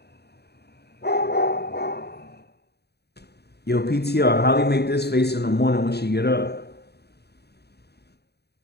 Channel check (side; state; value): right; late; 0.48 ms